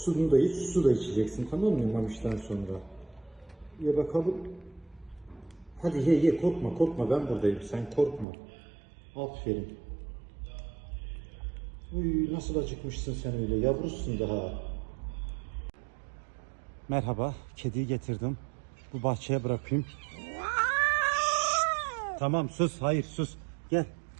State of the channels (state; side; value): drops out; left; at 8.2 s